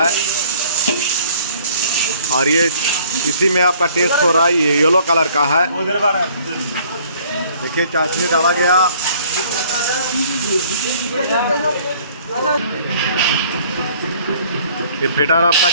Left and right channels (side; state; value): both; inverted; correlation -0.56